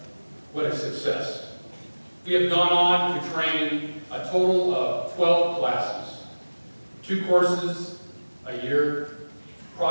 What a success. We have gone on to train a total of 12 classes, 2 courses a year,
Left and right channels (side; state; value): both; inverted; correlation -1.00